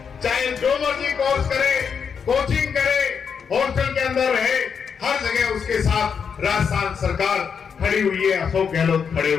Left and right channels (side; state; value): right; quieter; 6.6 dB